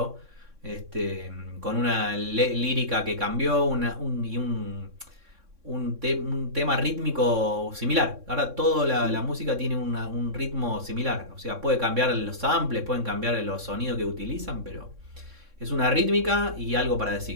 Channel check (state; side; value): late; left; 3.6 ms